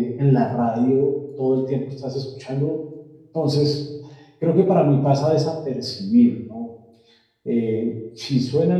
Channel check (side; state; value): both; identical; correlation 1.00